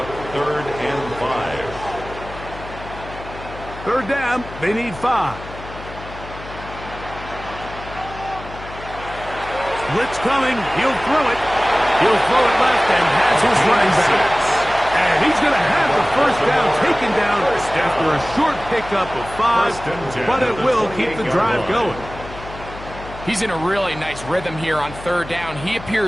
3rd and 5. 3rd down. They need 5. Blitz coming. He'll throw it. He'll throw it left and has his running back. And he's going to have the 1st down taken down after a short pickup of 5. But it will keep the drive going. He's in a really nice rhythm here on 3rd down. He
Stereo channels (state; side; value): noise; left; hum, 14 dB below the sound